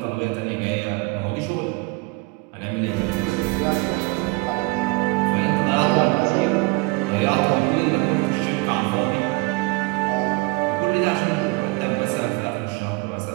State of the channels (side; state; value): left; quieter; 25.4 dB